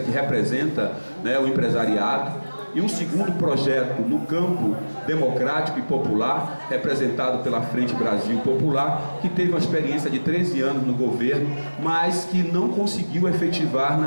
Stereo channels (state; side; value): inverted; both; correlation -1.00